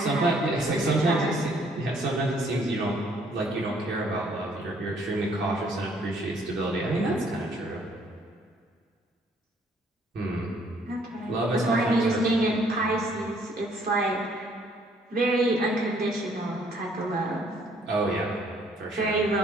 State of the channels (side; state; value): both; normal; correlation 0.64